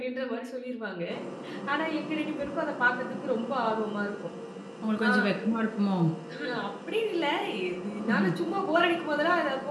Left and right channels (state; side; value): identical; both; correlation 1.00